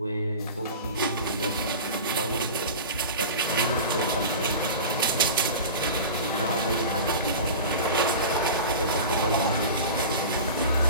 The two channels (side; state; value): both; inverted; correlation -0.32